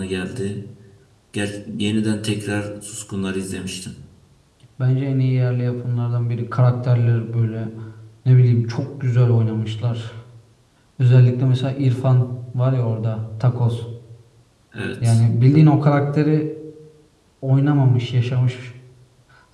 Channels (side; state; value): both; identical; correlation 1.00